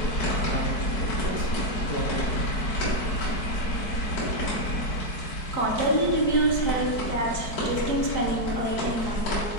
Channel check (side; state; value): right; late; 4.6 ms